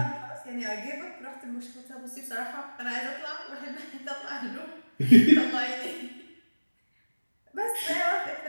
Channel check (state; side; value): inverted; both; correlation -1.00